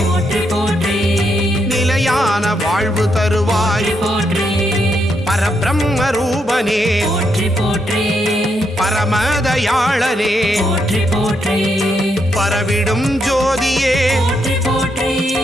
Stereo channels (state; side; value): normal; both; correlation 0.79